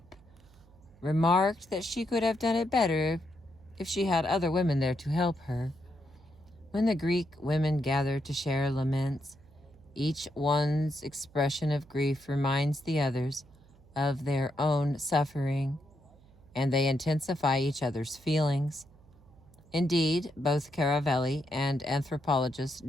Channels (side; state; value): right; noise; hum, 26 dB below the sound